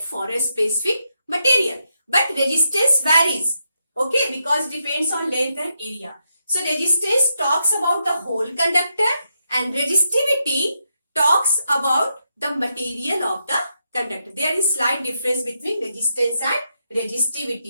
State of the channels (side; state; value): both; inverted; correlation -0.82